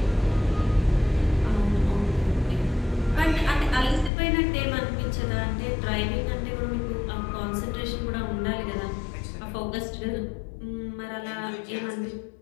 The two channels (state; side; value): drops out; right; at 4.1 s